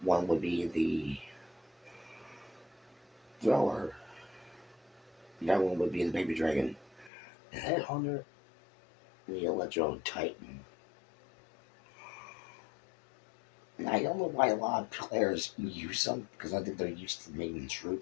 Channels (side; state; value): right; drops out; at 7.1 s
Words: One would be the thrower, the other one would be the baby dragon, the headhunter, and the electro titan. And I don't know why a lot of players use them because I think they're used to main